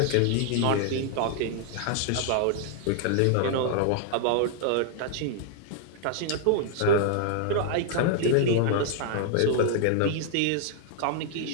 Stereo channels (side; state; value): both; different; correlation 0.00